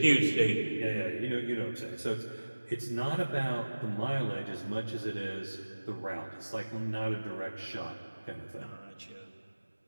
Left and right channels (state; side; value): inverted; both; correlation -1.00